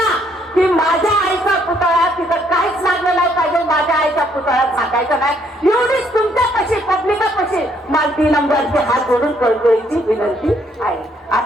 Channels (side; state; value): both; normal; correlation 0.69